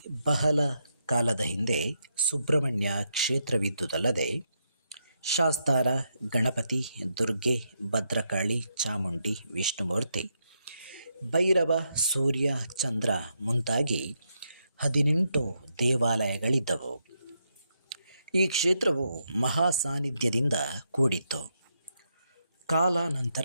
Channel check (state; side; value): inverted; both; correlation -0.81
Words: ಬಹಳ ಕಾಲದ ಹಿಂದೆ ಸುಬ್ರಹ್ಮಣ್ಯ ಕ್ಷೇತ್ರವಿದ್ದುದಲ್ಲದೆ ಶಾಸ್ತಾರ, ಗಣಪತಿ, ದುರ್ಗೆ, ಭದ್ರಕಾಳಿ, ಚಾಮುಂಡಿ, ವಿಷ್ಣುಮೂರ್ತಿ, ಭೈರವ, ಸೂರ್ಯ, ಚಂದ್ರ ಮುಂತಾಗಿ 18 ದೇವಾಲಯಗಳಿದ್ದವು. ಈ ಕ್ಷೇತ್ರವು ಮಹಾ ಸಾನ್ನಿಧ್ಯದಿಂದ ಕೂಡಿತ್ತು.